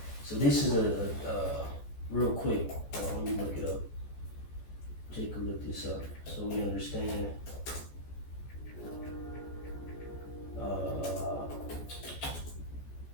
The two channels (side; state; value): right; late; 14 ms